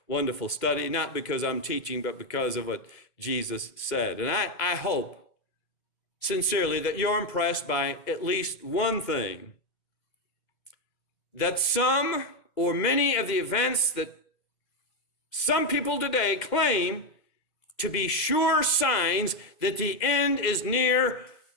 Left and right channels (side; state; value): right; late; 2.0 ms